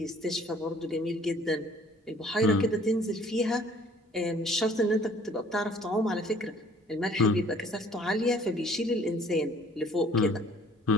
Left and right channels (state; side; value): normal; both; correlation 0.56